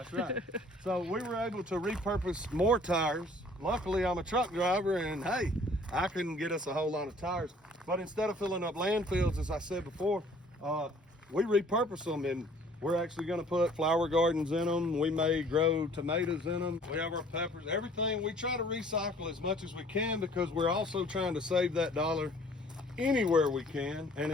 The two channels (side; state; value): both; normal; correlation 0.55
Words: right. So we were able to repurpose more tires. Luckily, I'm a truck driver, and hey, I couldn't get us a whole lot of tires. But instead of filling up landfills, as I said before, we repurpose them, and we're actually gonna put flower gardens in them. We may grow tomatoes in them. We have our peppers, everything. We try to recycle as much as we can because we're also trying to save that dollar anywhere we can, and